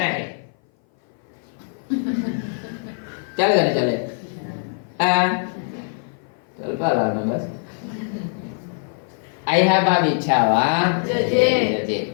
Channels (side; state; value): right; silent; 58 dB below the other